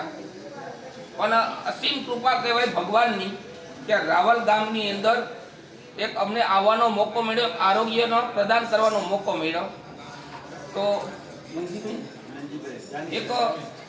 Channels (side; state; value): both; identical; correlation 1.00